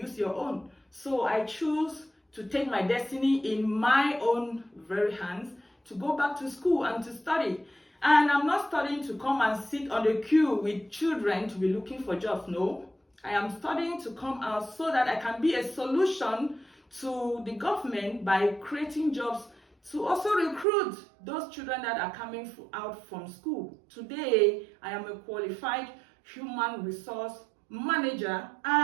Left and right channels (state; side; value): drops out; left; at 20.7 s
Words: your own. So I choose to take my destiny in my own very hands, to go back to school and to study. And I'm not studying to come and sit on the queue with children to be looking for jobs. No, I am studying to come out so that I can be a solution to the government by creating jobs to also recruit those children that are coming out from school. Today, I am a qualified human resource manager,